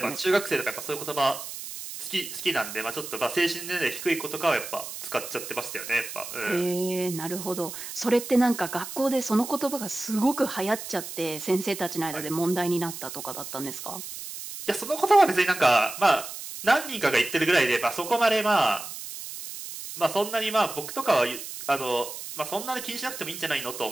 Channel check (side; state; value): right; noise; hiss, 9 dB below the sound